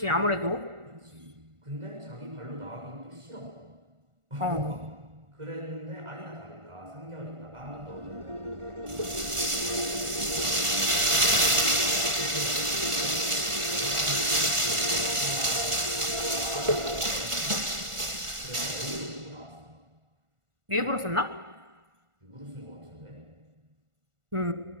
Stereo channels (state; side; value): late; left; 1.4 ms